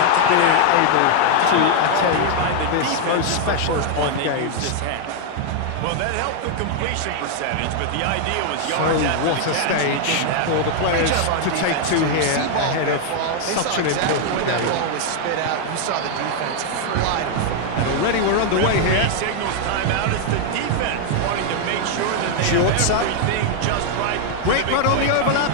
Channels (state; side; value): different; both; correlation 0.00